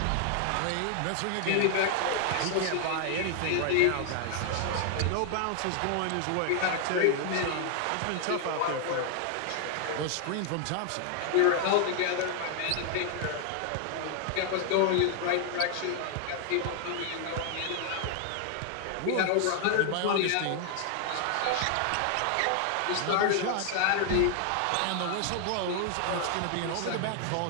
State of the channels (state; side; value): different; both; correlation 0.00